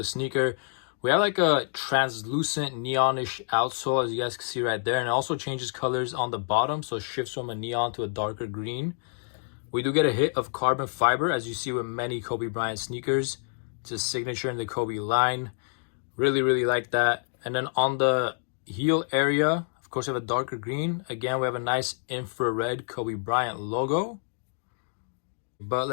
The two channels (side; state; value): right; silent; digital silence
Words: sneaker, we have like a translucent neonish outsole, as you guys can see right there. And it also changes colors on the bottom, so it shifts from a neon to a darker green. We do get a hit of carbon fiber, as you see with many Kobe Bryant sneakers. It's a signature in the Kobe line. Really like that. And then on the heel area, of course, we have a darker green. Again, we have a nice infrared Kobe Bryant logo. But